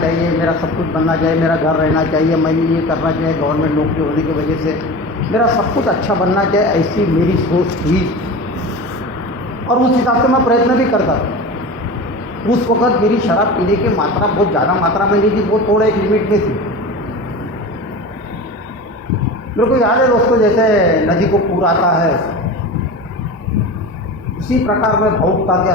चाहिए, मेरा सब कुछ बनना चाहिए, मेरा घर रहना चाहिए, मैंने ये करना चाहिए, गवर्नमेंट नौकरी होने की वजह से मेरा सब कुछ अच्छा बनना चाहिए, ऐसी मेरी सोच थी। और उस हिसाब से मैं प्रयत्न भी करता था। उस वक्त मेरी शराब पीने की मात्रा बहुत ज़्यादा मात्रा में नहीं थी, बहुत थोड़ा एक लिमिट में थी। मेरे को याद है दोस्तों, जैसे नदी को पूर आता है उसी प्रकार में भावुकता के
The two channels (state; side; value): normal; both; correlation 0.31